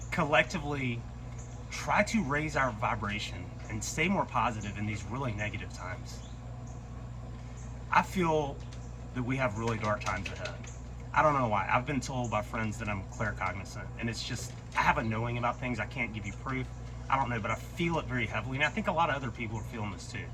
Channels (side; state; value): both; identical; correlation 1.00